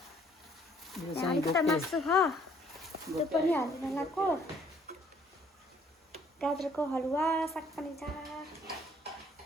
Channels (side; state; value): both; normal; correlation 0.62